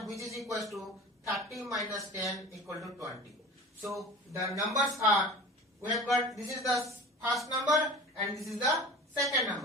which is equals to 30 minus 10 equal to 20. So the numbers are, we have got, this is the first number and this is the second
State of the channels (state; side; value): normal; both; correlation 0.38